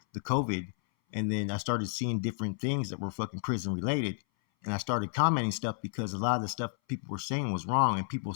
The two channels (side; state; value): right; silent; 57 dB below the other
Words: the COVID. And then I started seeing different things that were fucking prison related. And I started commenting stuff because a lot of the stuff people were saying was wrong. And people